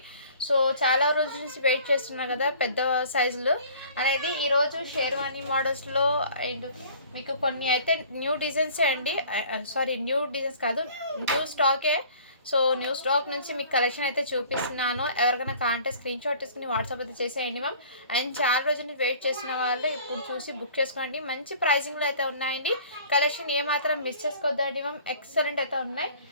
సో చాలా రోజుల నుంచి వెయిట్ చేస్తున్నా కదా పెద్ద సైజులు అనేది ఈరోజు షేర్వానీ మోడల్స్లో అండ్ మీకు కొన్ని అయితే న్యూ డిజైన్సే అండి. న్యూ డిజైన్స్ కాదు, న్యూ స్టాకే. సో న్యూ స్టాక్ నుంచి మీకు కలెక్షన్ అయితే చూపిస్తున్నాను. ఎవరికైనా కాంటే స్క్రీన్ షాట్ తీసుకుని వాట్సాప్ అయితే చేసేయండి మ్యామ్. అండ్ చాలా రోజుల నుంచి వెయిట్ చేసిన వాళ్ళు ఇప్పుడు చూసి బుక్ చేసుకోండి. మంచి ప్రైజింగ్లో అయితే ఉన్నాయండి. కలెక్షన్ ఏమాత్రం మిస్ చేసుకోవద్దండి మ్యామ్, ఎక్సలెంట్ అయితే ఉన్నాయి.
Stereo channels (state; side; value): inverted; both; correlation -0.50